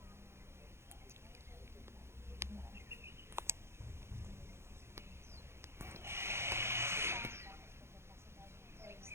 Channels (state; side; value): late; left; 0.12 ms